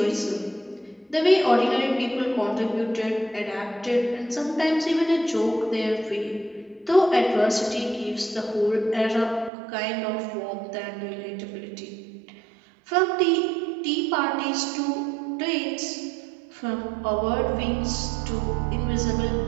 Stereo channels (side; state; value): left; drops out; at 9.5 s